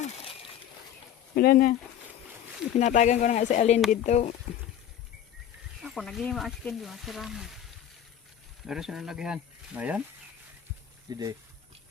Wala na. Pinatagan ko na nga si Alin dito. Ako, naging ma-askin di masirama. Meron siya nalagihan. Ayan. Hindi.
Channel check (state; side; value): quieter; right; 10.1 dB